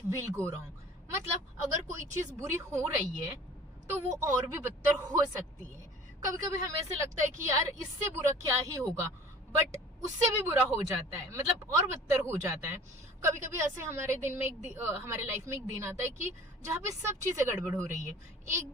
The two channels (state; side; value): normal; both; correlation 0.46